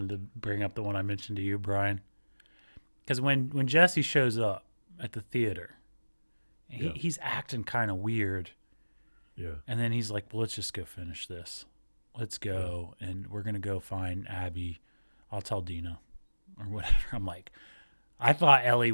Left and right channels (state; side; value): inverted; both; correlation -1.00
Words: to bring up the one I mentioned to you, Brian, because when Jesse shows up at the theater, he's acting kind of weird, and then he's like, "Well, let's just go finish this. Let's go, and we're gonna go find Abby. I'll tell Dina, or whatever." I'm like, I thought Ellie